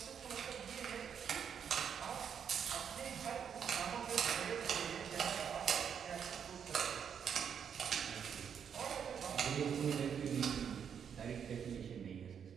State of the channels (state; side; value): quieter; left; 7.7 dB